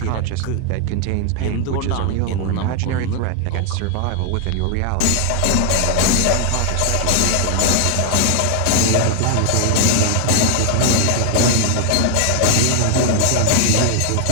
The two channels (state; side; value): different; both; correlation 0.01